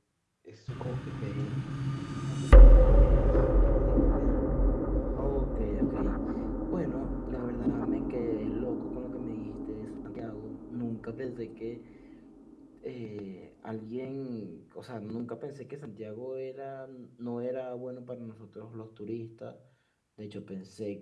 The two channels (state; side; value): identical; both; correlation 1.00